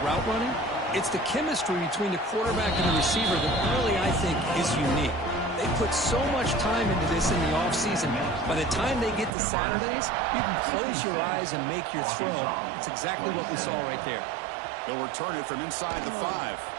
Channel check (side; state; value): left; drops out; at 9.3 s